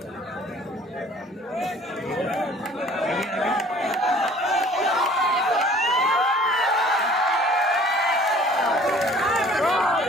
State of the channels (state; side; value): normal; both; correlation 0.51